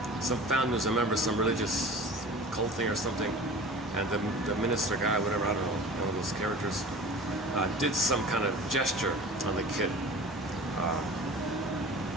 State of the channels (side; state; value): both; normal; correlation 0.39